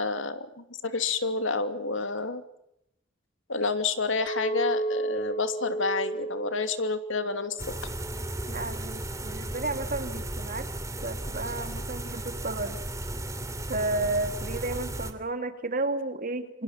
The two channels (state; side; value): normal; both; correlation -0.06